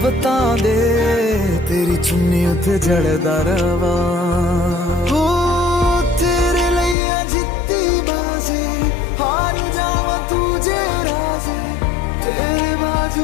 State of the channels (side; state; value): right; drops out; at 7.0 s